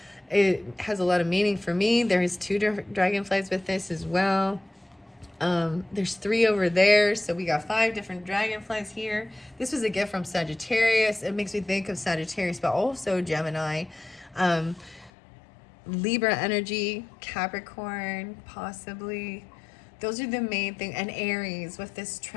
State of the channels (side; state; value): right; drops out; at 15.1 s